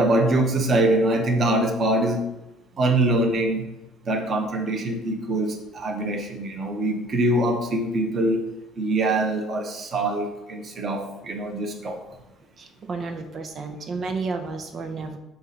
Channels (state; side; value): normal; both; correlation 0.53